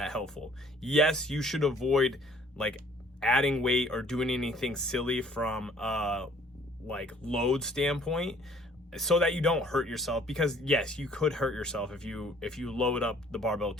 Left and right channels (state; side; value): normal; both; correlation 0.57